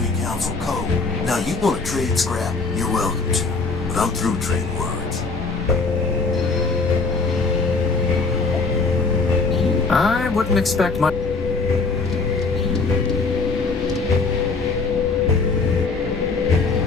council code. Now you want to trade scrap, you're welcome to. But I'm through trading words. I wouldn't expect much.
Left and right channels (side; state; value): right; quieter; 4.2 dB